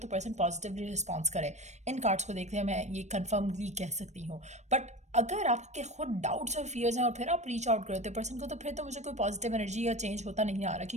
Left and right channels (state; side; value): late; left; 0.34 ms